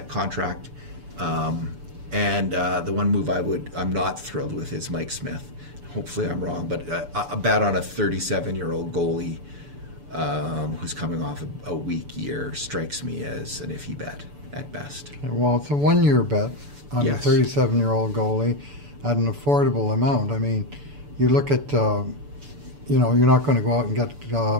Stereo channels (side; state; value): left; late; 6.9 ms